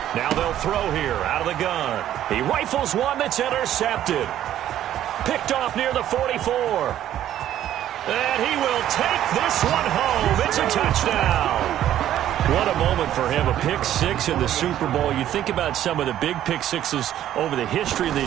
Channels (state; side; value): quieter; left; 11.8 dB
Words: Now they'll throw here out of the gun. He rifles one that's intercepted. Picked off near the 44. And he will take this one home. It's a touchdown. What a moment for him, a pick six in the Super Bowl. You think about some of the big pick sixes over the history of